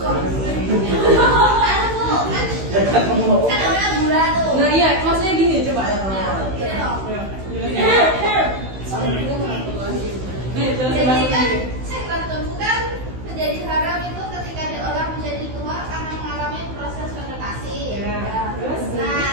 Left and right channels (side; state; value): left; late; 16 ms